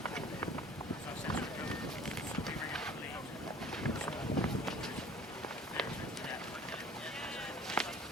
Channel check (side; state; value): both; normal; correlation 0.49